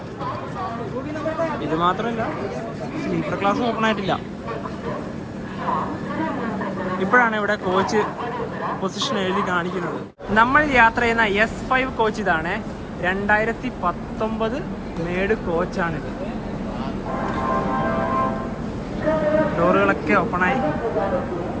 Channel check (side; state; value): both; identical; correlation 1.00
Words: ഇത് മാത്രമല്ല, സ്ലീപ്പർ ക്ലാസ് ഓപ്പൺ ആയിട്ടില്ല. ഇപ്പോഴാണ് ഇവിടെ കോച്ച് പൊസിഷൻ എഴുതി കാണിക്കുന്നത്. നമ്മൾ യാത്ര ചെയ്യുന്ന S5 കോച്ച് ഇതാണ്. 2019 മേഡ് കോച്ചാണിത്. ഡോറുകളൊക്കെ ഓപ്പണായി